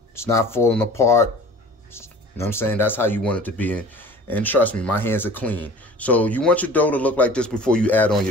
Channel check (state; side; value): normal; both; correlation 0.43